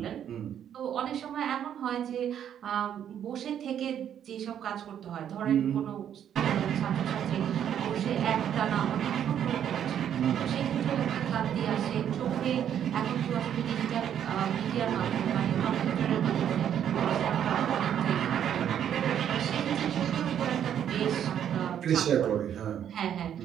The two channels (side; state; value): left; quieter; 9.6 dB